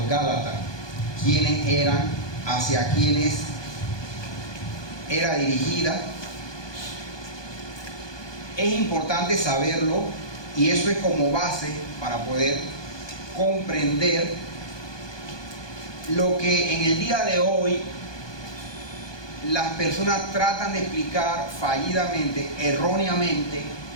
Gálatas, quiénes eran, hacia quiénes era dirigida. Es importante saberlo y eso es como base para poder comprender lo que en el día de hoy las personas tratan de explicar fallidamente, erróneamente,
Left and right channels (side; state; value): right; late; 1.2 ms